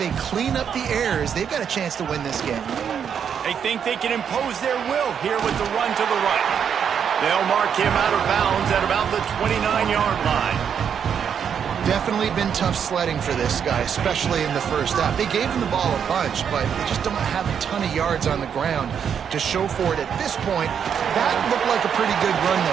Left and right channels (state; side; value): quieter; left; 7.8 dB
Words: clean up the errors, they've got a chance to win this game. They think they can impose their will here with the run to the right. They'll mark him out of bounds at about the 29-yard line. Definitely been tough sledding for this guy, especially in the first half. They gave him the ball a bunch, but they just don't have a ton of yards on the ground to show for it at this point. That looked like a pretty good run,